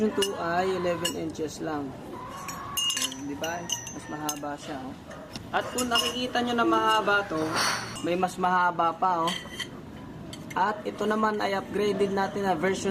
2 ay 11 inches lang. So, di ba? Mas mahaba siya. Oh. At kung nakikita nyo na mahaba to, may mas mahaba pa. Oh. At ito naman ay upgraded natin na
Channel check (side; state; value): both; identical; correlation 1.00